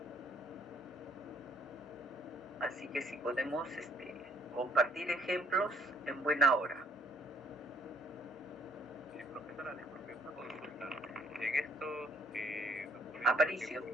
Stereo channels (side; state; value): both; normal; correlation 0.64